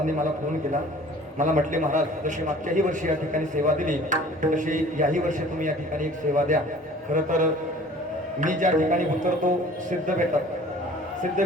मला फोन केला. मला म्हटले, महाराज जशी मागच्याही वर्षी या ठिकाणी सेवा दिली तशी याही वर्षी तुम्ही या ठिकाणी एक सेवा द्या. खरं तर मी ज्या ठिकाणी उतरतो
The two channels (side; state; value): both; normal; correlation 0.48